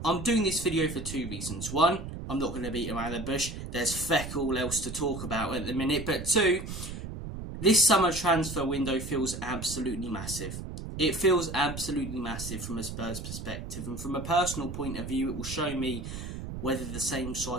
I'm doing this video for two reasons. One, I'm not going to beat around the bush. There's feck all else to talk about at the minute. But two, this summer transfer window feels absolutely massive. It feels absolutely massive from a Spurs perspective. And from a personal point of view, it will show me whether the same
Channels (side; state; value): right; noise; rumble, 8 dB below the sound